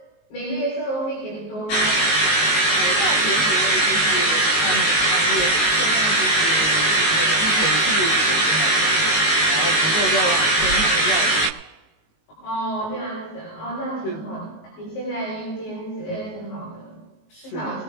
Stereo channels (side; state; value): right; late; 19 ms